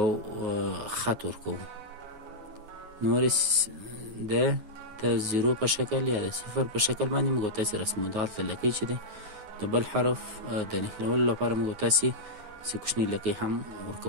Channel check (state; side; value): late; left; 9.4 ms